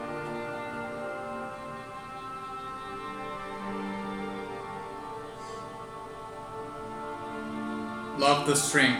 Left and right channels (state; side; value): identical; both; correlation 1.00